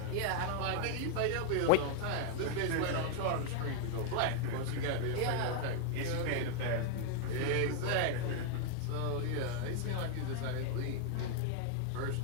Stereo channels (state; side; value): different; both; correlation 0.00